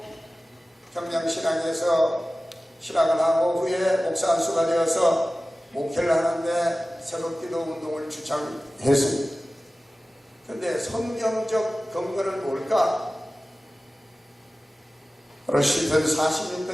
평양신앙에서 신앙을 하고 후에 목사 안수가 되어서 목회를 하는데 새벽기도 운동을 주창했습니다. 그런데 성경적 근거는 뭘까? 바로 시편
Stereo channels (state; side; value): normal; both; correlation 0.96